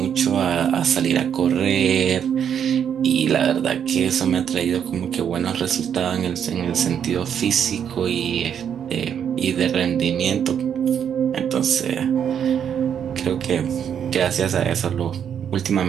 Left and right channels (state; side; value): quieter; left; 8.5 dB